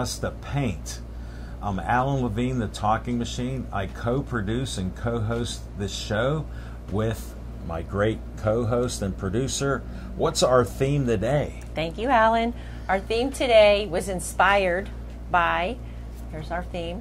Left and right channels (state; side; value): identical; both; correlation 1.00